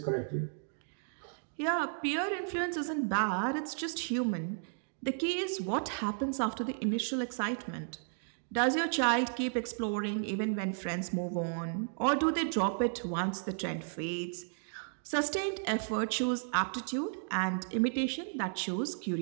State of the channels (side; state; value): left; silent; digital silence